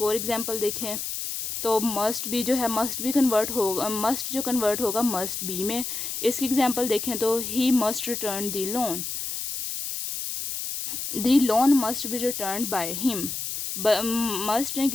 और एग्जांपल देखें तो मस्ट बी जो है, मस्ट बी कन्वर्ट होगा, मस्ट जो कन्वर्ट होगा मस्ट बी में। इसकी एग्जांपल देखें तो he must return the loan, the loan must be return by him. Must ने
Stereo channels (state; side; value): noise; left; hiss, 4 dB below the sound